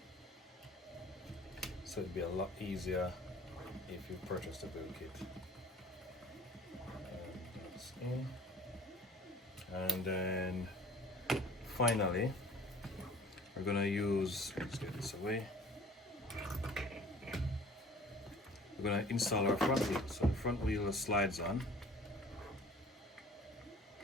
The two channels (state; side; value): normal; both; correlation 0.48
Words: so it'd be a lot easier if you purchase the build kit. And that's in. And then finally, we're gonna use, let's get this away. We're gonna install our front wheel. So the front wheel slides on.